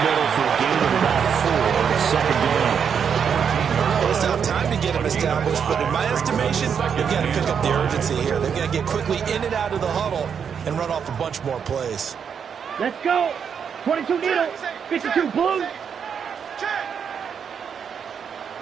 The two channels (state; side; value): quieter; left; 7.2 dB